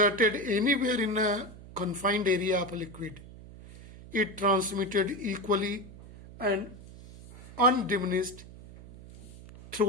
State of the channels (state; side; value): noise; right; hum, 17 dB below the sound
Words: anywhere in a confined area of a liquid, it transmitted equally and undiminished